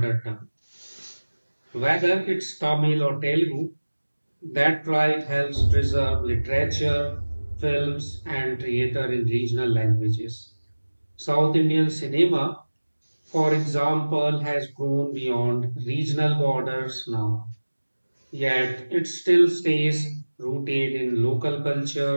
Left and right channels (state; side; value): inverted; both; correlation -1.00